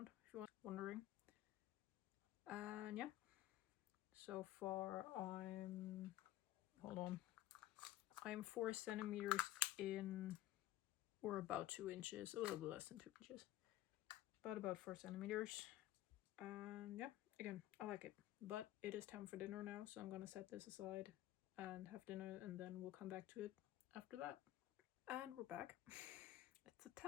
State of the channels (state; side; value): quieter; right; 14.6 dB